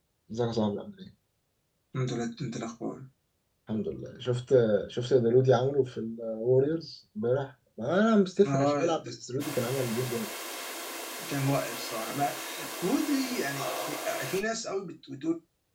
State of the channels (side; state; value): both; identical; correlation 1.00